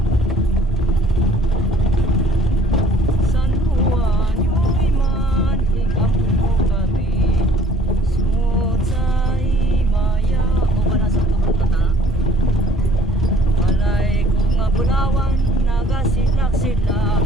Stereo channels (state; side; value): normal; both; correlation 0.56